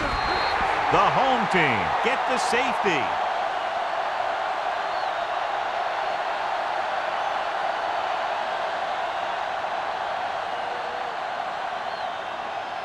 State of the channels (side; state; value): both; identical; correlation 1.00